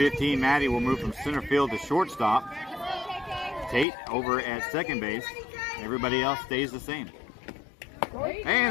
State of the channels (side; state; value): right; drops out; at 3.9 s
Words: Maddie, will move from center field to shortstop. Tate over at second base. Everybody else stays the same.